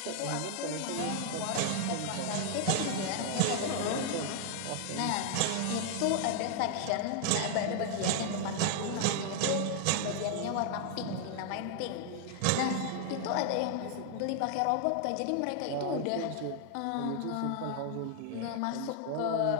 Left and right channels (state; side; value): different; both; correlation 0.00